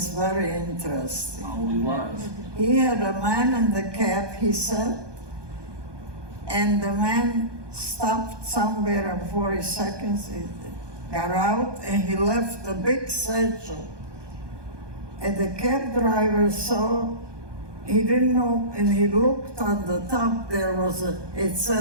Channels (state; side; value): late; left; 1.2 ms